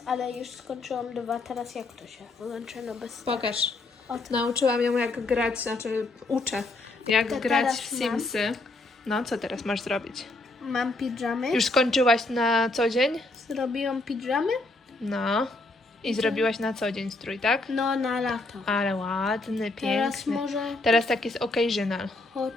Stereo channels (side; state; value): right; quieter; 3.0 dB